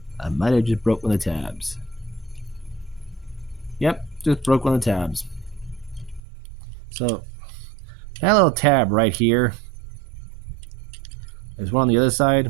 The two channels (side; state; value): left; drops out; at 6.2 s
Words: I might have just broke one of the tabs. Yep, just broke one of the tabs. So, that little tab right here. There's one on the other side.